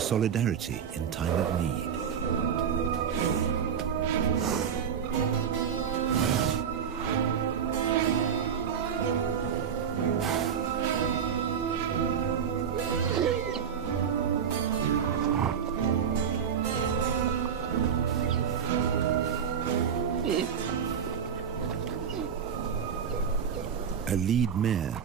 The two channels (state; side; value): quieter; left; 7.6 dB